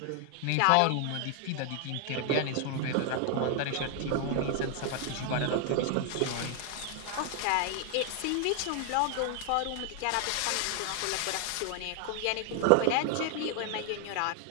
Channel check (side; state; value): both; different; correlation 0.00